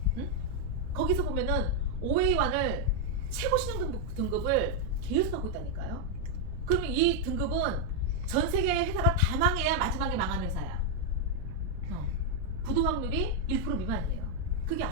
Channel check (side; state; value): right; noise; rumble, 11 dB below the sound